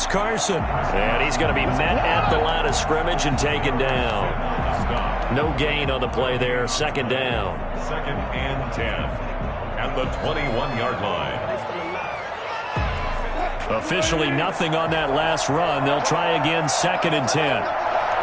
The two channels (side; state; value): both; identical; correlation 1.00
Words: Carson. And he's going to be met at the line of scrimmage and taken down. No gain on the play there. Second down. Second and 10 at the 21-yard line. Officially nothing on that last run. They'll try again, second and 10.